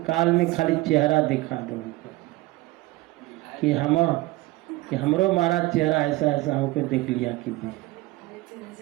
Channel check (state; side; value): quieter; left; 19.4 dB